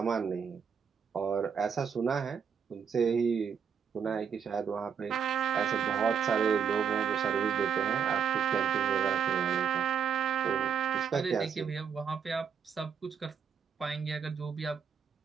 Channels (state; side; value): quieter; left; 7.3 dB